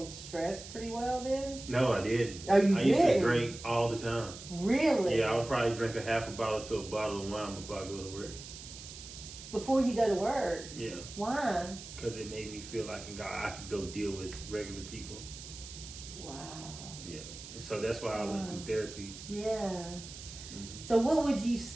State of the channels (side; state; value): right; noise; hiss, 13 dB below the sound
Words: stress pretty well then. No, I didn't. Oh, you I did? used to drink all the time. Really? Yeah, I would probably drink a half a bottle to a bottle of wine before I go to work. Before you go to work? Yeah. Why? Because it made me feel like I could go deal with regular people. Wow. Yeah. And so that's why I went through therapy. Yeah. Mm-hmm. So what would you